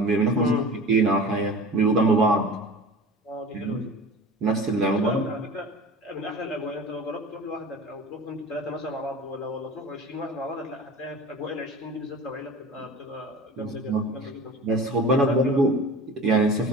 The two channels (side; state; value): both; normal; correlation 0.37